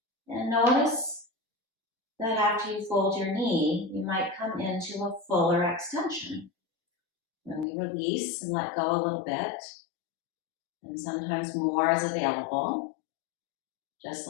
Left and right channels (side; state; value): right; drops out; at 7.7 s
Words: And notice that after you fold your knee, you might come into a fuller extension. When we release and let go a little bit, and sometimes more is available, just